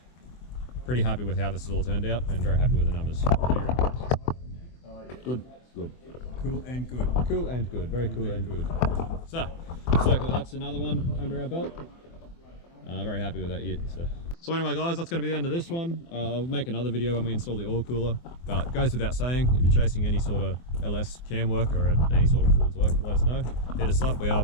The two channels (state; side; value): late; right; 24 ms